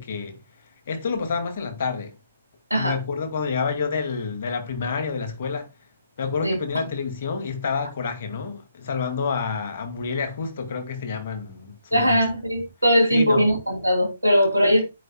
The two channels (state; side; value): inverted; both; correlation -0.78